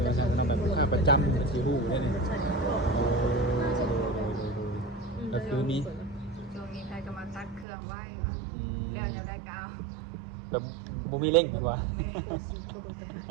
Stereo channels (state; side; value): drops out; left; at 7.7 s